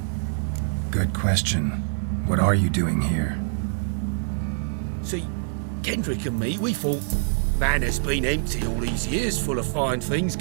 Good question. What are you doing here? See, Kendrick and me, we thought Manor's been empty all these years, full of fine things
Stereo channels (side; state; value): left; silent; 56 dB below the other